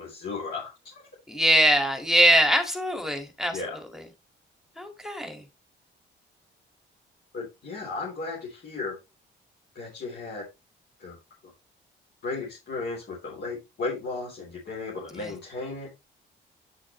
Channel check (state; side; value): normal; both; correlation 0.72